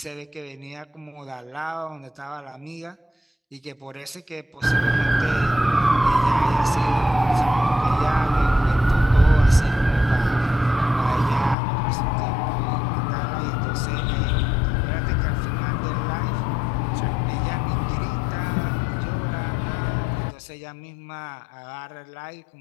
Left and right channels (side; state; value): right; drops out; at 11.6 s